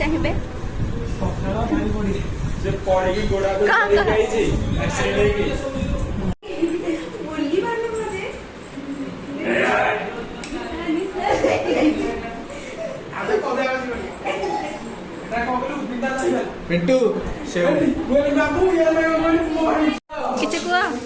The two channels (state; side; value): identical; both; correlation 1.00